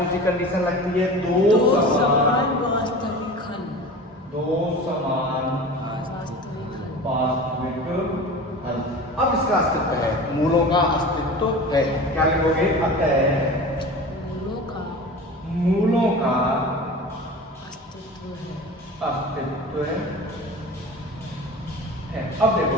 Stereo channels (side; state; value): both; normal; correlation 0.35